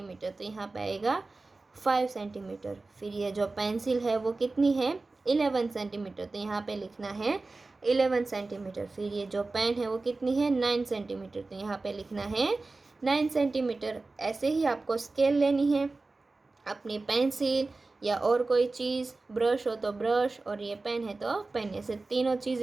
तो यहाँ पे आएगा 5 सेंटीमीटर। फिर ये जो पेंसिल है वो कितनी है, 11 सेंटीमीटर, तो यहाँ पे लिखना है 11 सेंटीमीटर। फिर ये जो पेन है वो कितनी है, 9 सेंटीमीटर, तो यहाँ पे लिखना है 9 सेंटीमीटर। ऐसे ही आपको स्केल लेनी है, अपनी पेंसिल या और कोई चीज़, ब्रश हो तो ब्रश, और ये पेन है तो पेन, ऐसे तीनों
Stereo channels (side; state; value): left; quieter; 3.5 dB